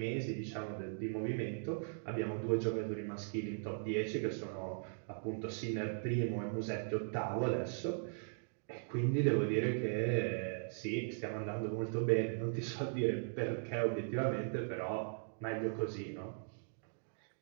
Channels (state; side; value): silent; left; digital silence